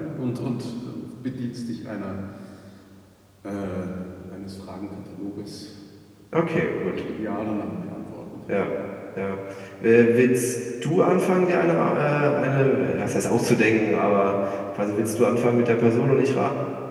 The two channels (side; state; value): both; identical; correlation 1.00